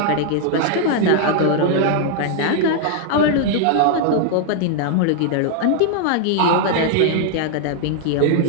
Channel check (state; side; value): different; both; correlation 0.00